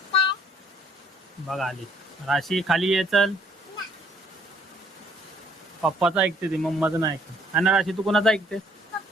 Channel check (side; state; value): both; normal; correlation 0.63